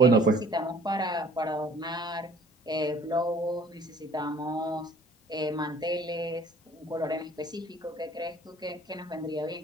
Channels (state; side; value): normal; both; correlation 0.53